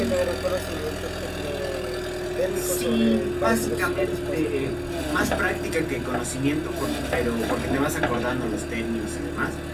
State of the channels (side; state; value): both; identical; correlation 1.00